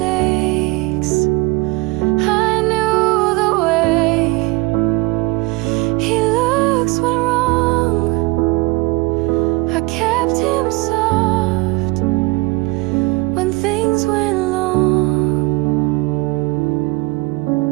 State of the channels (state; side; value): quieter; left; 23.2 dB